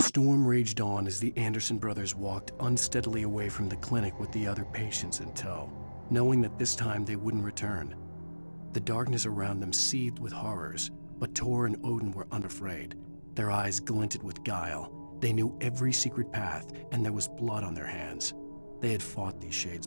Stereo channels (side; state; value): both; inverted; correlation -1.00